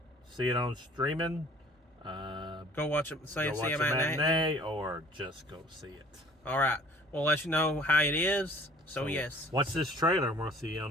see it on streaming. Go watch it. See a matinee, or just go see it. All right. We'll let you know how it is. So yes. Watch this trailer, and we'll see you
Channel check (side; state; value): both; normal; correlation 0.51